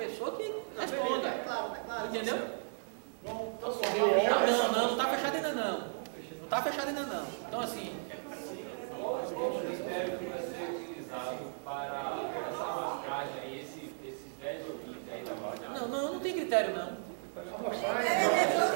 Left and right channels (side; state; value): left; silent; digital silence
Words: que responda. Entendeu? Não está fechado ainda não. Não está fechado ainda não. Então assim. Qual o critério que vai ser utilizado para essa amostragem aí, esses 10 ouvintes aí da Bahia? Não tem critério não. Não